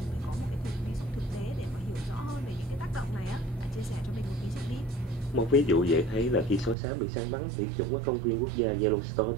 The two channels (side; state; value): left; drops out; at 6.8 s